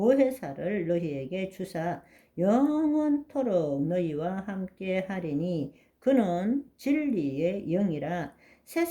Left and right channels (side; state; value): both; identical; correlation 1.00